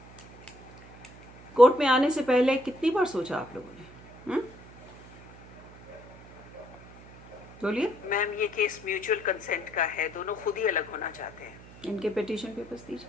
कोर्ट में आने से पहले कितनी बार सोचा आप लोगों ने? बोलिए। मैम, ये केस म्यूचुअल कंसेंट का है, दोनों खुद ही अलग होना चाहते हैं। इनके पिटीशन पेपर्स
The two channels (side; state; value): right; noise; hum, 20 dB below the sound